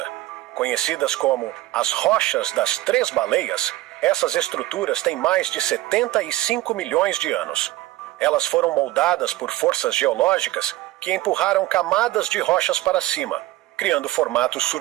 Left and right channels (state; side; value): quieter; left; 16.9 dB